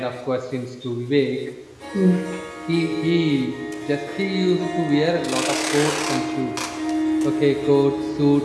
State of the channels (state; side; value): identical; both; correlation 1.00